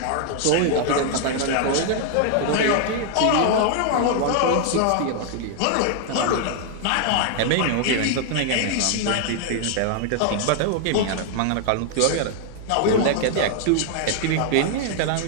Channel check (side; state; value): both; different; correlation 0.00